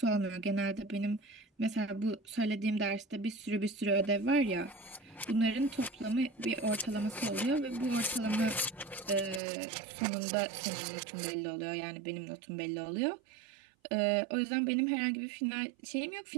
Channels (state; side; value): drops out; left; at 9.4 s